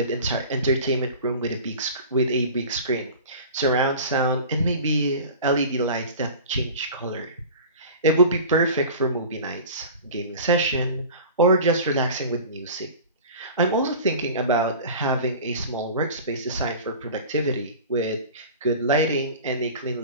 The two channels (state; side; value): inverted; both; correlation -0.38